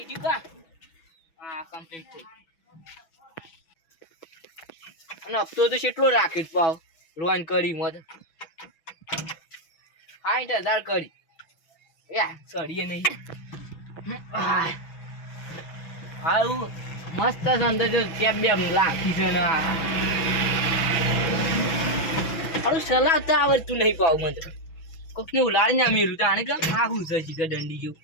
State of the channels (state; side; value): late; right; 6.1 ms